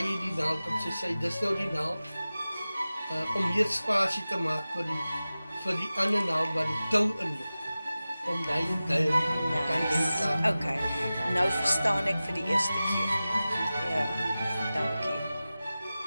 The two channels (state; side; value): inverted; both; correlation -0.96